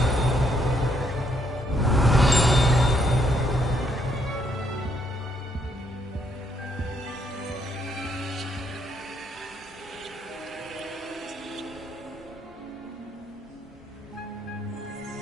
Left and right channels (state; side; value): normal; both; correlation 0.72